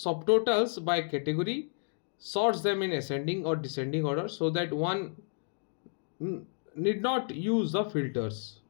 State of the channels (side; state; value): right; silent; digital silence